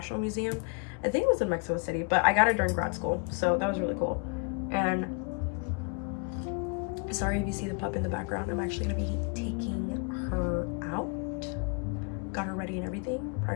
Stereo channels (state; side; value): quieter; right; 34.6 dB